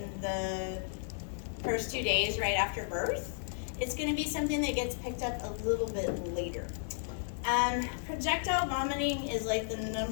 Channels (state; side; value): silent; right; digital silence